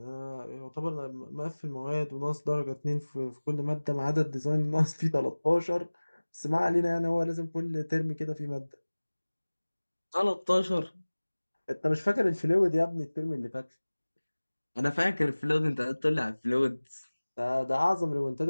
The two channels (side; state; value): both; inverted; correlation -1.00